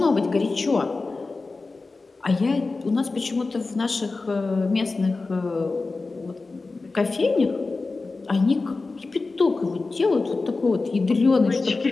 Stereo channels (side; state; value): right; quieter; 3.7 dB